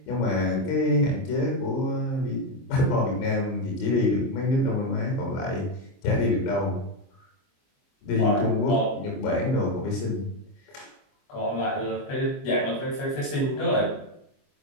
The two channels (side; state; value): right; late; 22 ms